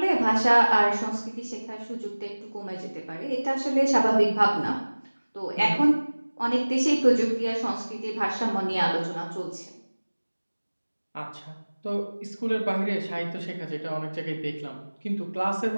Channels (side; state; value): both; inverted; correlation -1.00